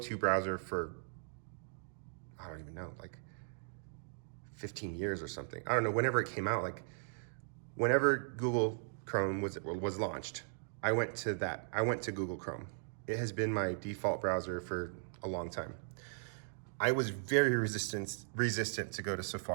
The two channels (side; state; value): left; silent; digital silence